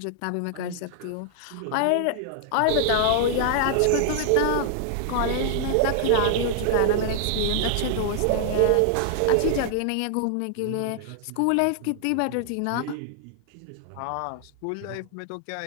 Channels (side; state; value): both; different; correlation -0.01